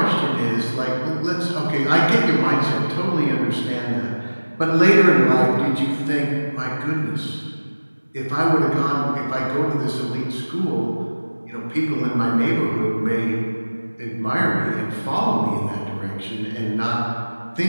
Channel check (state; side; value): inverted; both; correlation -1.00